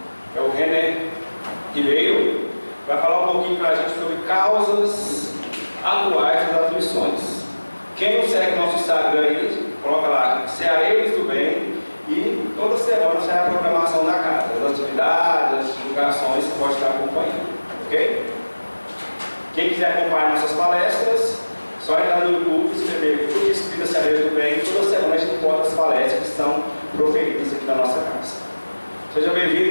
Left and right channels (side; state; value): both; inverted; correlation -1.00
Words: é o René Ribeiro, vai falar um pouquinho para a gente sobre causas atuais das aflições. Quem não segue nosso Instagram aí, coloca lá, Cearenses do Bem, e toda semana sai a programação da casa, as atividades, as divulgações, você pode estar acompanhando, ok? Quem quiser acompanhar nossas palestras, só entrar no YouTube, escrever Clube Espírita Cearenses do Bem, toda semana a gente posta as palestras que são proferidas aqui na nossa casa. Seja